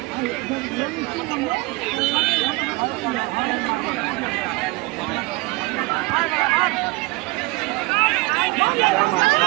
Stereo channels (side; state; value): left; quieter; 23.7 dB